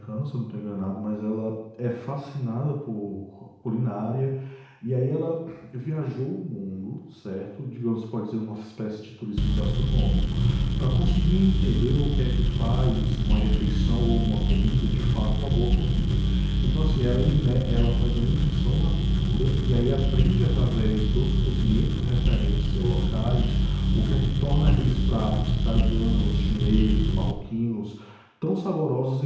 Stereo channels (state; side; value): identical; both; correlation 1.00